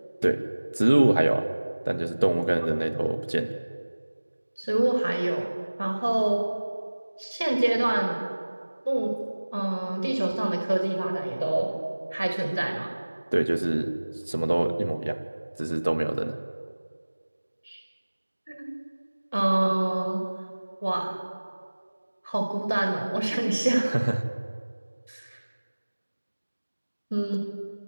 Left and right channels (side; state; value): both; inverted; correlation -1.00